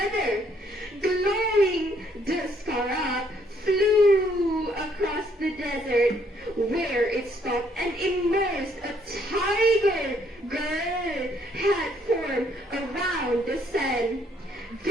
Glowing, the scarab flew across the desert, where it stopped and immersed a tiger girl had formed around the sand.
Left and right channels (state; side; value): normal; both; correlation 0.68